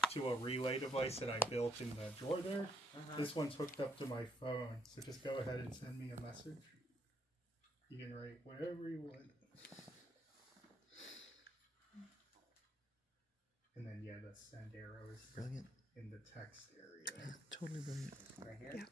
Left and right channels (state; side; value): normal; both; correlation 0.74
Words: to a relay device that I built in the drawer there. This one's hooked up to my phone. So just go ahead and send me a message. You can write whatever you want. And then yeah, the send arrow is Brilliant. in the text area. Totally brilliant. Right here?